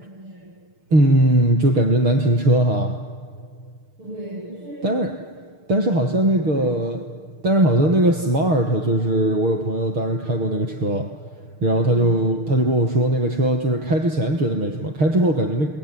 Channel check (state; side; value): late; left; 6.6 ms